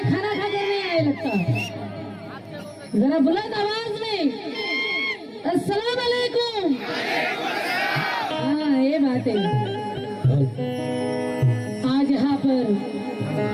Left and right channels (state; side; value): identical; both; correlation 1.00